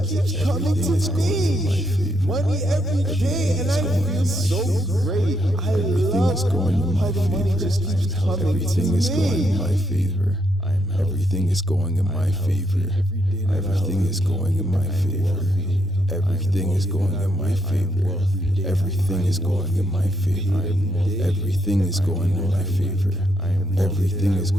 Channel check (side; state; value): both; normal; correlation 0.77